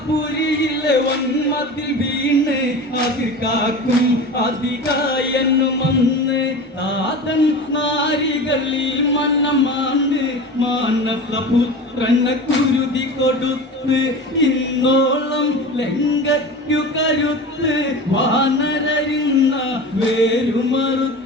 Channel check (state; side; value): normal; both; correlation 0.32